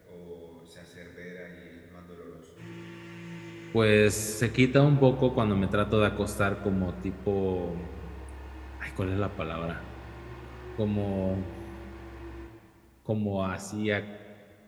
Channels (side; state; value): both; identical; correlation 1.00